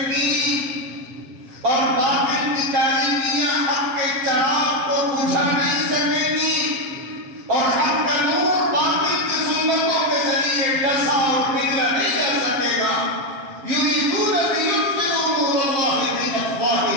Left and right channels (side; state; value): left; late; 7.9 ms